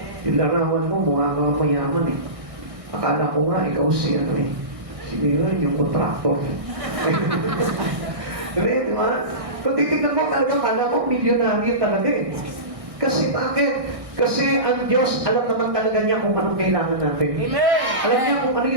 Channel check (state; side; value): late; left; 1.6 ms